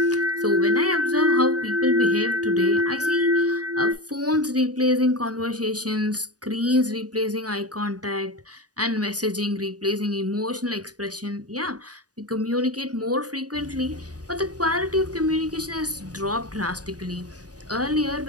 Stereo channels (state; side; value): late; left; 0.68 ms